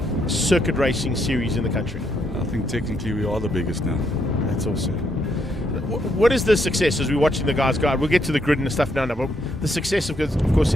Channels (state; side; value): normal; both; correlation 0.75